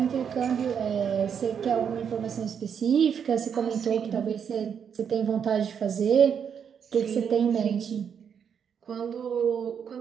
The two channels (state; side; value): quieter; left; 7.5 dB